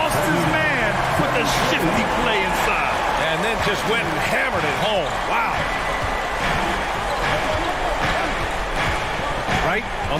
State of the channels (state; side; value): identical; both; correlation 1.00